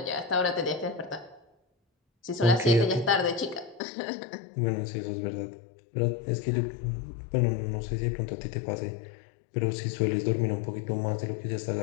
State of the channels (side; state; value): right; drops out; at 3.8 s